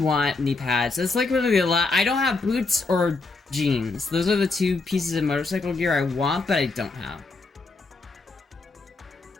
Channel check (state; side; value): quieter; right; 3.7 dB